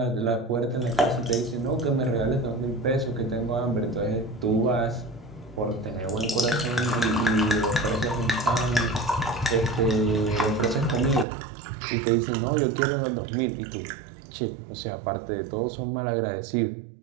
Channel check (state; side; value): drops out; left; at 11.2 s